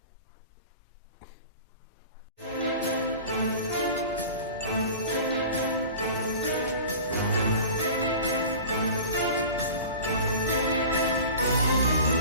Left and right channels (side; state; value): both; inverted; correlation -0.38